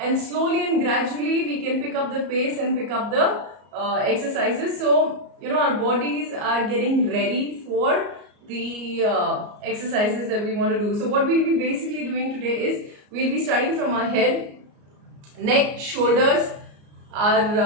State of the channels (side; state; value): left; late; 34 ms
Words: slowly and gradually we can pick up the pace and pick up the exercises. So, our bodies are getting ready for the exercises that we want to do. So, what we'll be basically doing today is we'll be starting from our head, neck, shoulders,